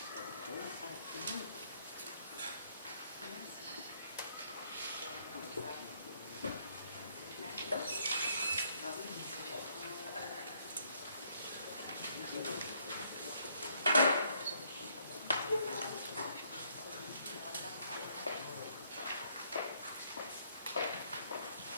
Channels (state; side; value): inverted; both; correlation -0.68